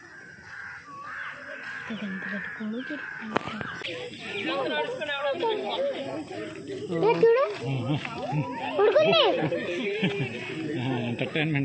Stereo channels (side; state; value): both; identical; correlation 1.00